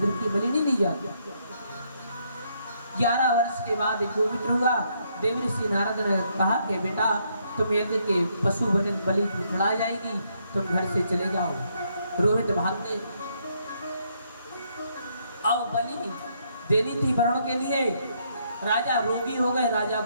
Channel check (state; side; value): inverted; both; correlation -0.73